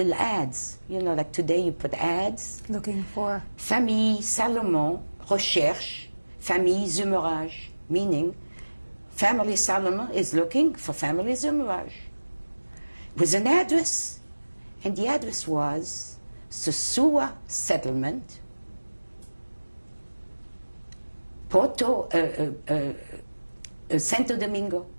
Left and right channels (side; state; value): both; inverted; correlation -1.00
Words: ads. You know, like today you put ads. Looking for? Famille Salomon recherche famille Zumerage, meaning family Salomon is looking for family Zumerage. With an address. And the address was Sosua Settlement, Santo Domingo.